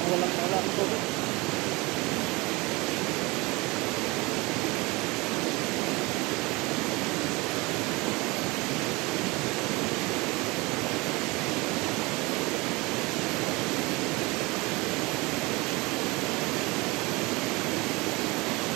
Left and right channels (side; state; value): left; quieter; 24.1 dB